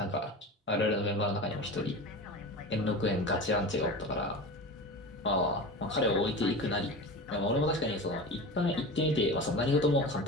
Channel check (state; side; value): normal; both; correlation 0.30